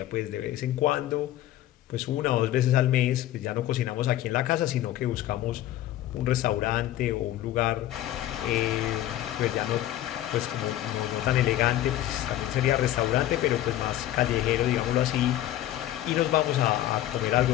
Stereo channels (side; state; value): right; quieter; 13.4 dB